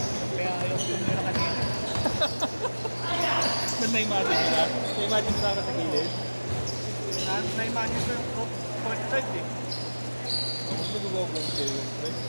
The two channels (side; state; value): both; inverted; correlation -1.00